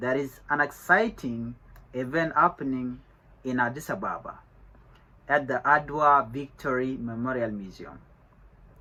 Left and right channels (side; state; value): both; identical; correlation 1.00